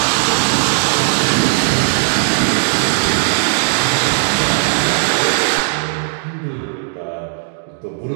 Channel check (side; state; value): left; silent; digital silence